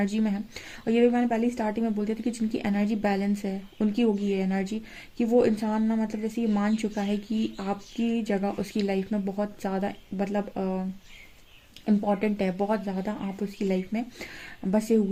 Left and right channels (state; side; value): identical; both; correlation 1.00